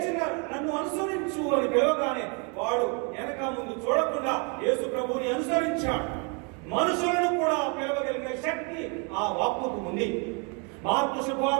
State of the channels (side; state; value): left; quieter; 34.7 dB